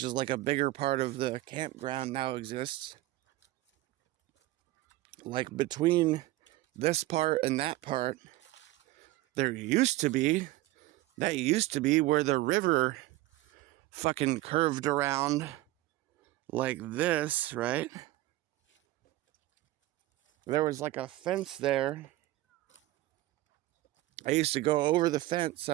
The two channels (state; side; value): quieter; left; 17.5 dB